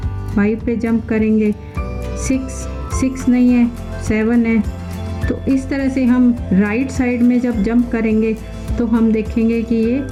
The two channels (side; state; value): both; identical; correlation 1.00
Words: पे जंप करेंगे, 6 नहीं है, 7 है। तो इस तरह से हम राइट साइड में जब जंप करेंगे तो हम देखेंगे कि ये